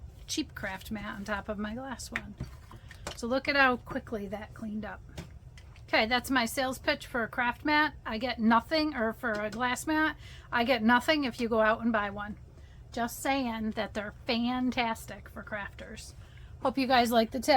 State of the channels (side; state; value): both; identical; correlation 1.00